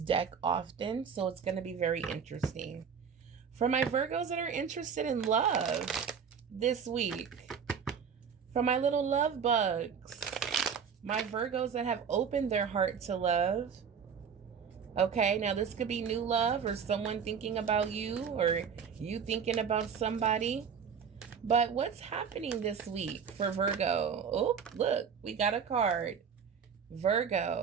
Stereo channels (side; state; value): left; quieter; 6.8 dB